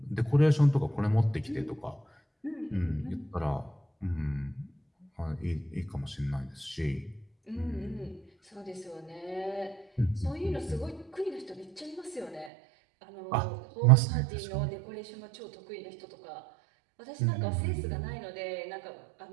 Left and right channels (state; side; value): drops out; left; at 12.5 s